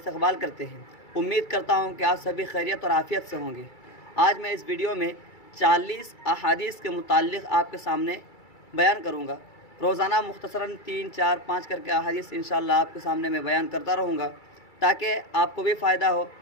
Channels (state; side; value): late; right; 2.3 ms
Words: کرتے ہیں۔ امید کرتا ہوں کہ آپ سبھی خیریت اور عافیت سے ہوں گے۔ آج میں اس ویڈیو میں 40 احادیث کے متعلق آپ کے سامنے بیان کروں گا۔ روزانہ مختصراً 3، 4، 5 کر کے احادیث انشاءاللہ آپ کے سامنے میں بیان کرتا رہوں گا، تاکہ آپ کو بھی فائدہ ہو